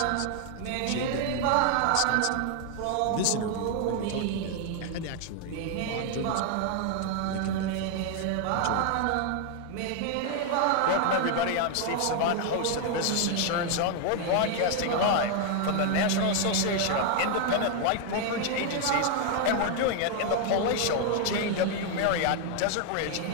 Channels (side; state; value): both; different; correlation 0.00